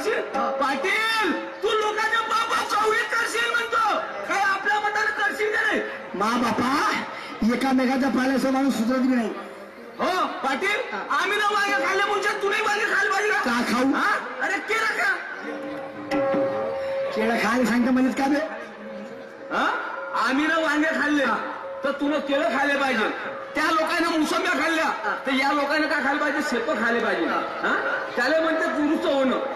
पाटील तू लोकांच्या बाबा चौळीत करशील म्हणतो, काय आपल्या मताने करशील का नाही? मा बापा एकामेकाच्या पाल्याचा माणूस सुधरत बी नाही. हो पाटील, आम्ही ना मागे खाल्ले मुंच्या तुम्ही मागे खाल पाहिजे का खाऊ? हा? अरे केलं का? केळं खायला सांगता म्हणत का बे? हा? आम्ही ना वांगे खाल्ले तर तुला केळं खायला पाहिजे. त्या लोकांना मोसंब्या खाल्ल्या तर या लोकांना काय खायला पाहिजे? शेतं खायला पाहिजे. हा, त्याला म्हणते दुरुस्त होणं.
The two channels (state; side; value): identical; both; correlation 1.00